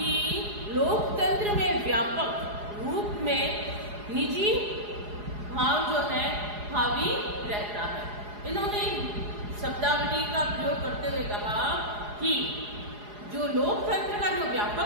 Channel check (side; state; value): left; late; 4.8 ms